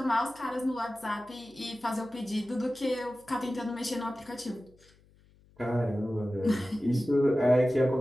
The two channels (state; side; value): noise; left; hum, 29 dB below the sound